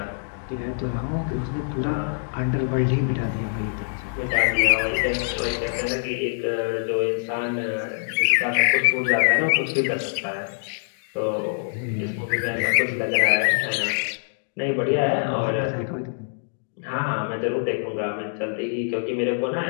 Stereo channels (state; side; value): silent; right; digital silence